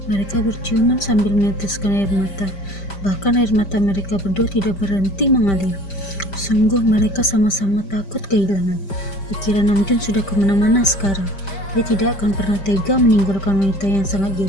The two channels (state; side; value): late; right; 5.1 ms